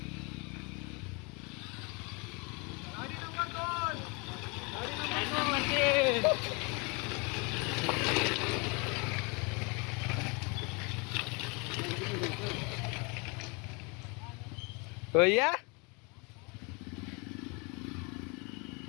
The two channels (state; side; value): quieter; right; 30.8 dB